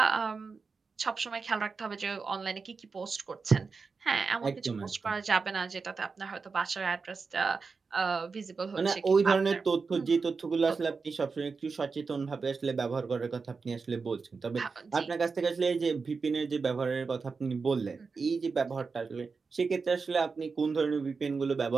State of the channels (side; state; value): left; quieter; 4.8 dB